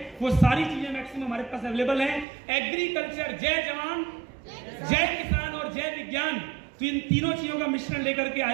वो सारी चीजें मैक्सिमम हमारे पास अवेलेबल है। एग्रीकल्चर, जय जवान, जय किसान और जय विज्ञान, तो इन तीनों चीजों का मिश्रण लेकर के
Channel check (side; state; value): left; drops out; at 2.2 s